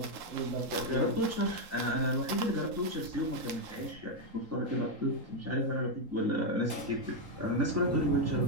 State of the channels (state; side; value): late; left; 3.8 ms